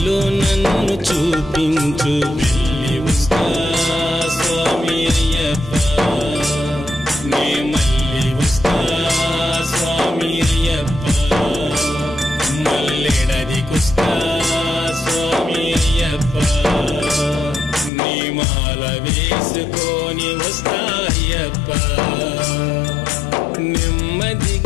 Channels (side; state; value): right; drops out; at 17.9 s